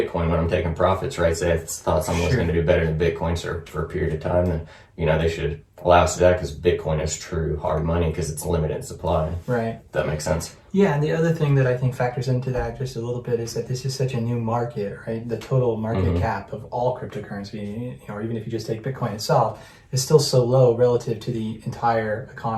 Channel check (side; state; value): both; identical; correlation 1.00